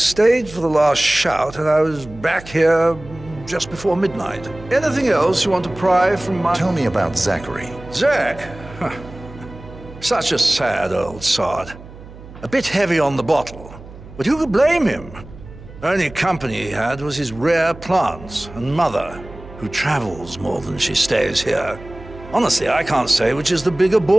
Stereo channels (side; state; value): right; noise; hum, 17 dB below the sound